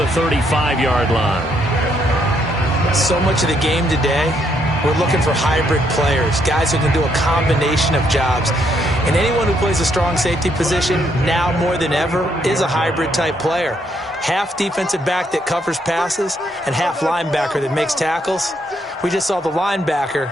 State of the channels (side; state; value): both; normal; correlation 0.73